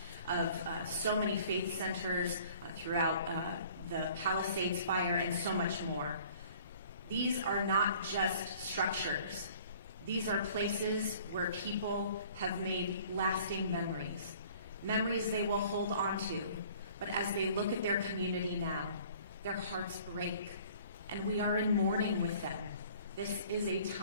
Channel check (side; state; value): both; inverted; correlation -0.52